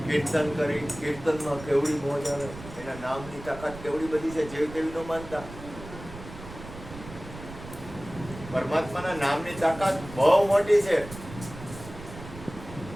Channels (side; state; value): right; noise; rumble, 14 dB below the sound